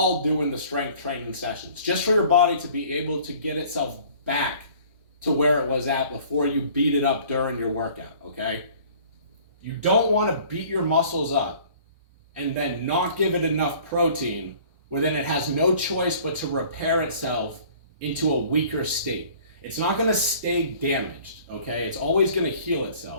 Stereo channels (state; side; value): inverted; both; correlation -0.51